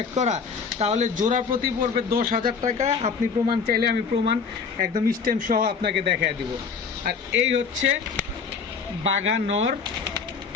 করা, তাহলে জোড়া প্রতি পড়বে 10,000 টাকা। আপনি প্রমাণ চাইলে আমি প্রমাণ একদম স্ট্যাম্প সহ আপনাকে দেখায় দিব। আর এই হচ্ছে বাঘা নর,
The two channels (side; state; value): right; quieter; 5.6 dB